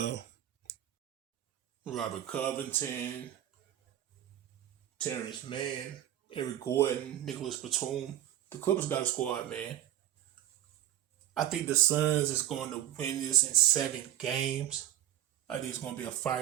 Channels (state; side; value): quieter; left; 12.7 dB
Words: Robert Covington, Terrence Mann, Eric Gordon, Nicholas Batum. The Clippers got a squad, man. I think the Suns is going to win this in 7 games. I think it's going to be a